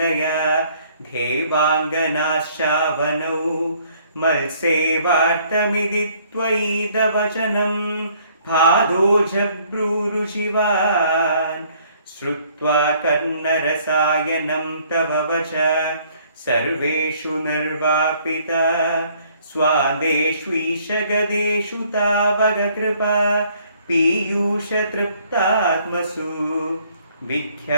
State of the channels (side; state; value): both; inverted; correlation -0.62